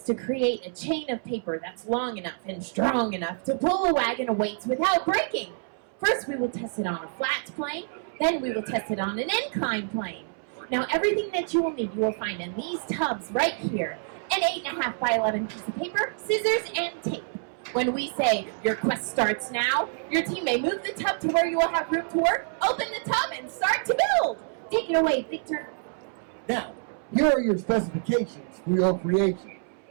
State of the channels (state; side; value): silent; left; 60 dB below the other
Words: to create a chain of paper that's long enough and strong enough to pull a wagon of weights without breaking. First, we will test it on a flat plane. Then we will test it on an inclined plane. Now, everything that you will need, you will find in these tubs right here. An 8.5 by 11 piece of paper, scissors, and tape. When we say, your quest starts now, your team may move the tub to where you will have room to work, open the tub, and start to build. Take it away, Victor. Now, here are your specifications for your creation.